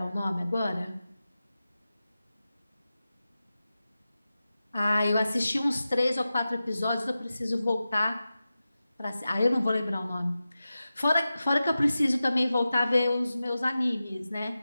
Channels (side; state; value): both; inverted; correlation -0.93